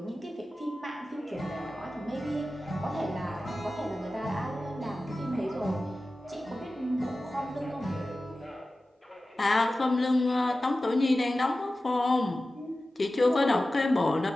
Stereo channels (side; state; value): both; normal; correlation 0.95